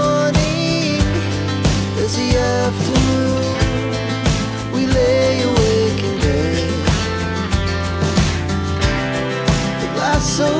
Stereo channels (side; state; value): both; identical; correlation 1.00